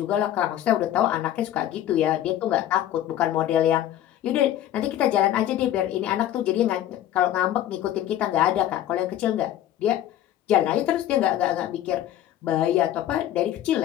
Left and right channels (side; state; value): right; quieter; 12.2 dB